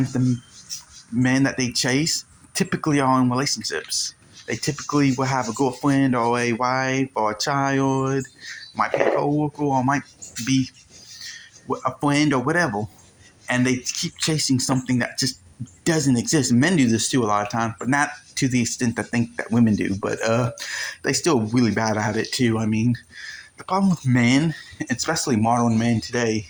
men that they chase typically are in relationships. They typically will have a girlfriend or a wife or a child, might be a coworker or might be a friend or whatever, and they keep chasing something that just doesn't exist. Men do this too a lot of times, but not to the extent I think that women do. But they still really bad at it too. I mean, the problem with men, especially modern men today,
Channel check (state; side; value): identical; both; correlation 1.00